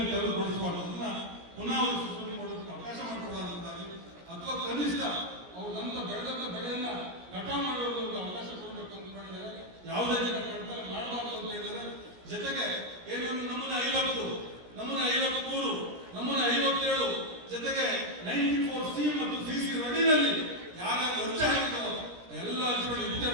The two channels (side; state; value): left; late; 16 ms